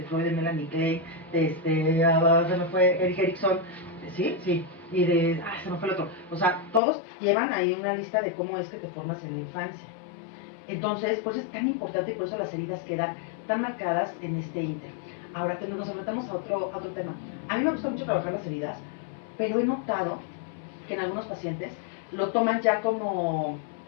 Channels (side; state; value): right; drops out; at 6.8 s